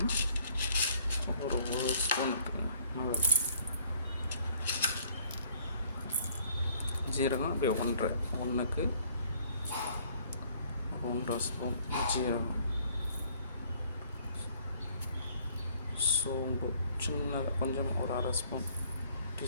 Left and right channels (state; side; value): inverted; both; correlation -0.61